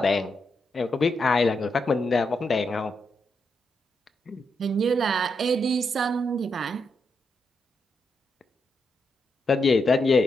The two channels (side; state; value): both; normal; correlation 0.82